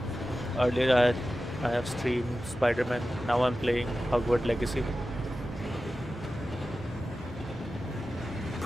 Earlier I have streamed Spider-Man. Now I'm playing Hogwarts Legacy.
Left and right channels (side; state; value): both; normal; correlation 0.93